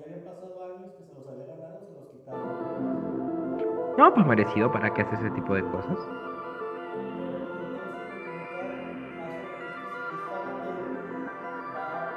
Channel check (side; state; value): both; identical; correlation 1.00